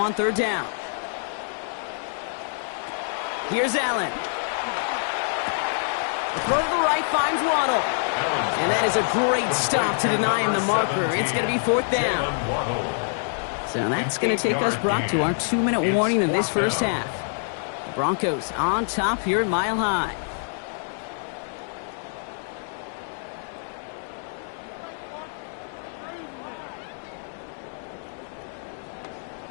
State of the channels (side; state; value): right; silent; digital silence